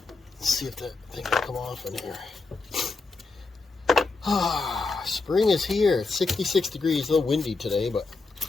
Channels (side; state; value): right; quieter; 3.9 dB